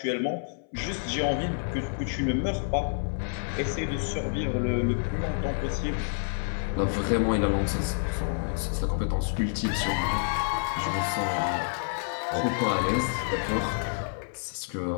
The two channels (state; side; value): silent; right; 59 dB below the other